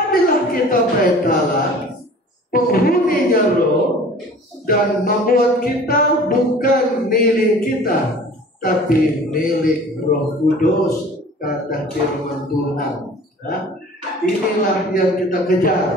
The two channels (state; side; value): normal; both; correlation 0.45